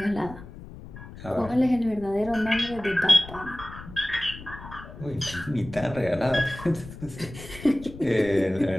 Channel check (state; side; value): noise; left; rumble, 15 dB below the sound